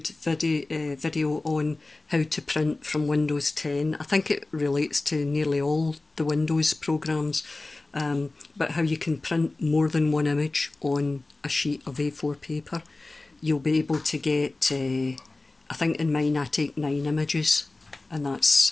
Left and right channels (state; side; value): quieter; right; 3.1 dB